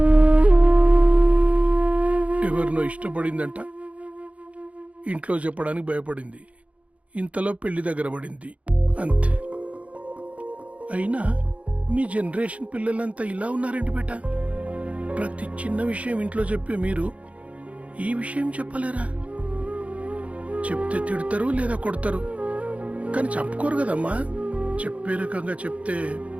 ఎవరినో ఇష్టపడిందంట, ఇంట్లో చెప్పడానికి భయపడింది. ఇంతలో పెళ్లి దగ్గర పడింది, అంతే. అయినా మీ జనరేషన్ పిల్లలంతా ఇలా ఉన్నారేంటి బేట? ప్రతి చిన్న విషయం ఇంట్లో చెప్పే మీరు ఈ విషయం చెప్పలేరా? చెప్తే తిడతారు లేదా కొడతారు, కానీ చంపుకోరు కదమ్మా. చెప్పే రకంగా చెప్తే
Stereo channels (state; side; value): late; left; 0.065 ms